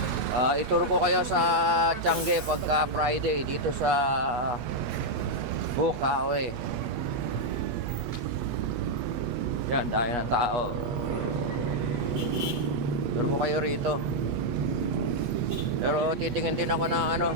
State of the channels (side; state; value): left; late; 5.6 ms